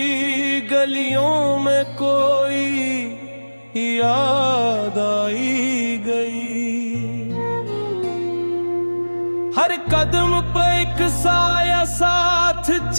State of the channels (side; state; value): both; inverted; correlation -1.00